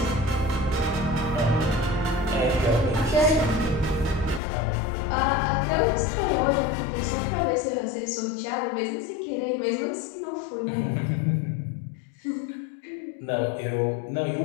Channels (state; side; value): drops out; right; at 4.4 s